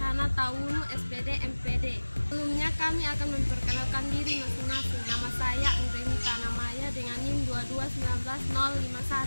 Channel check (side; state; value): both; inverted; correlation -1.00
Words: Tawunu, SPD, MPD. Sebelumnya kami akan memperkenalkan diri masing-masing. Nama saya Anggreni Tanamaya dengan NIM